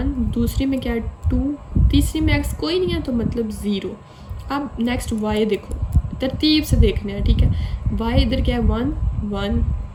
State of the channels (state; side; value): identical; both; correlation 1.00